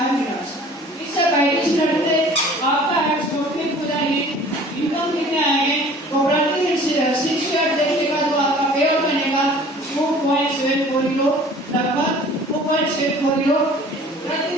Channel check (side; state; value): both; normal; correlation 0.48